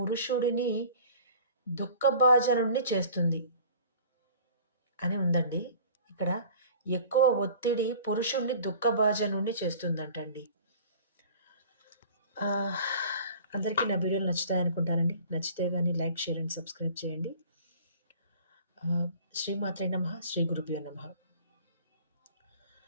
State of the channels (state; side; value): inverted; both; correlation -0.46